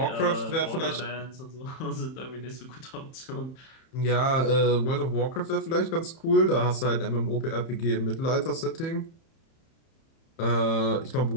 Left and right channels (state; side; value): late; right; 31 ms